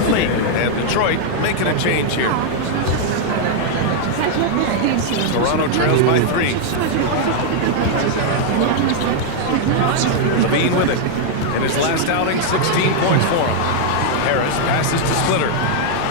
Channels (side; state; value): both; different; correlation 0.00